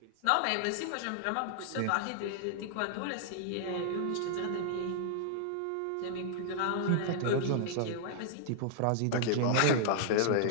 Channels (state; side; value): different; both; correlation -0.01